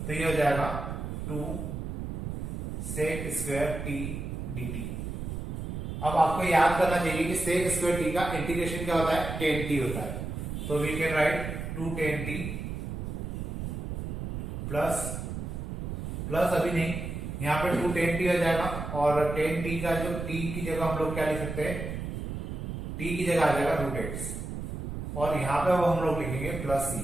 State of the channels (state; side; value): noise; right; rumble, 5 dB below the sound